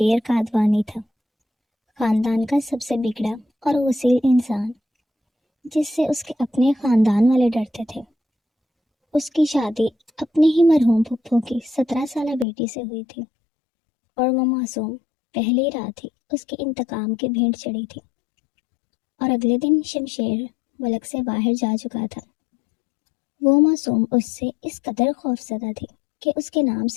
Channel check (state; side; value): drops out; right; at 12.5 s